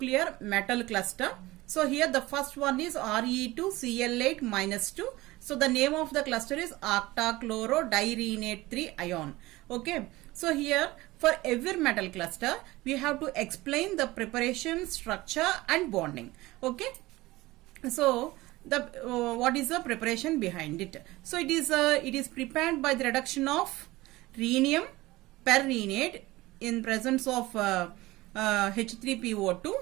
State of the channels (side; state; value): left; quieter; 19.3 dB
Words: metal cluster. So here the first one is Re2Cl8 minus 2. So the name of the cluster is octachlorodirenate 3 ion. Okay. So here for every metal cluster we have to explain the preparation, structure and bonding. Okay. So the what is the preparation behind it? So it is prepared by the reduction of rhenium perrhenate in presence of